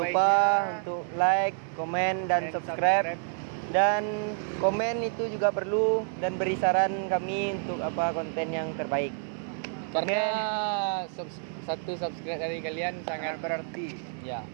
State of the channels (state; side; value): silent; left; 57 dB below the other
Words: lupa untuk like, komen, dan subscribe. Dan komen itu juga perlu, dan beri saran kami untuk apa konten yang terbaik. Karena satu subscribe dari kalian sangat berarti. ya.